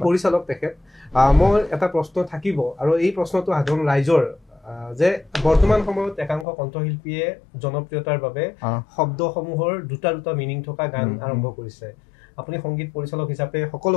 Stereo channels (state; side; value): drops out; right; at 6.5 s